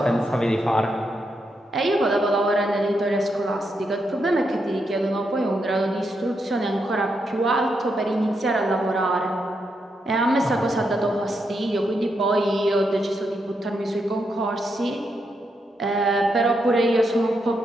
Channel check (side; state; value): both; normal; correlation 0.82